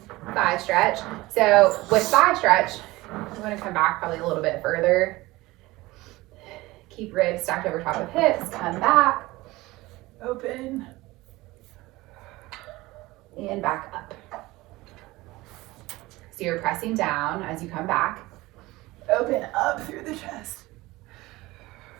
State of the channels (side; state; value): left; quieter; 19.8 dB